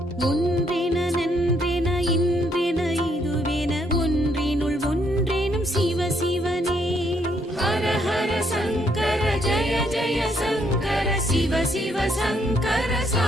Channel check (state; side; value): normal; both; correlation 0.72